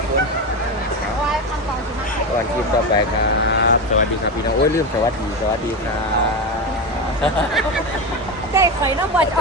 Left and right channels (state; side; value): normal; both; correlation 0.17